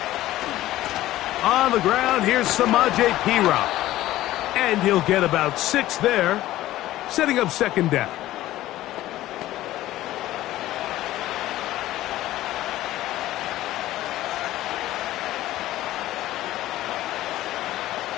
On the ground, here's Samaje Perine. And he'll get about 6 there, setting up 2nd down.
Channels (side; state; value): right; quieter; 15.2 dB